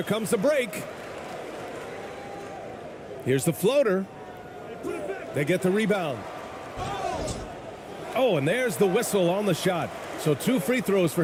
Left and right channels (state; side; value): identical; both; correlation 1.00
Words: comes the break. Here's the floater. They get the rebound. Oh, and there's the whistle on the shot. So 2 free throws for